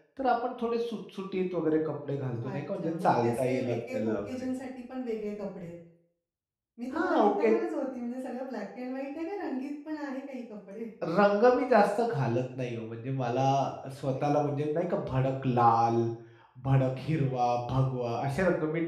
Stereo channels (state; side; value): identical; both; correlation 1.00